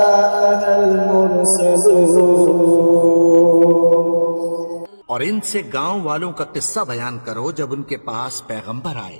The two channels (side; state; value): both; inverted; correlation -1.00